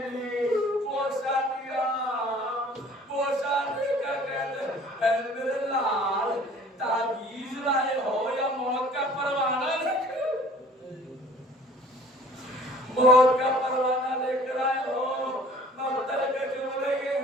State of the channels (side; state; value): both; normal; correlation 0.50